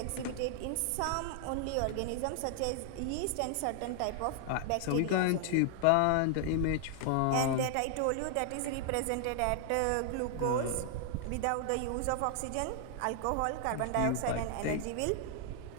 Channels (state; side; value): different; both; correlation 0.00